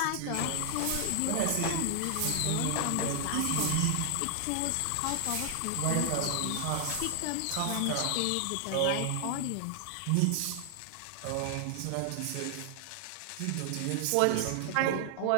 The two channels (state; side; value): different; both; correlation 0.00